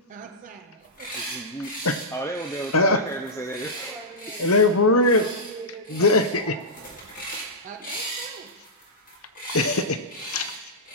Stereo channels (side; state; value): both; normal; correlation -0.12